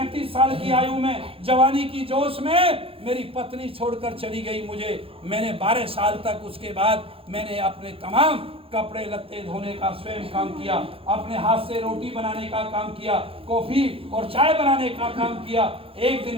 साल की आयु में, जवानी की जोश में मेरी पत्नी छोड़कर चली गई मुझे। मैंने 12 साल तक, उसके बाद मैंने अपने तमाम कपड़े लत्ते धोने का स्वयं काम किया, अपने हाथ से रोटी बनाने का काम किया, कॉफी और चाय बनाने का काम किया। एक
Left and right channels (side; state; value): left; late; 0.27 ms